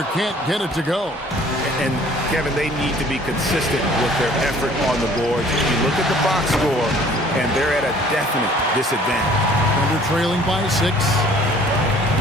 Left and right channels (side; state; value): both; normal; correlation 0.54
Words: can't get it to go. And, Kevin, they need to be consistent with their effort on the boards. You look at the box score, and they're at a definite disadvantage. Thunder trailing by 6.